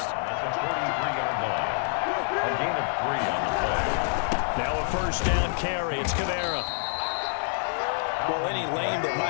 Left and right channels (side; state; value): right; silent; 60 dB below the other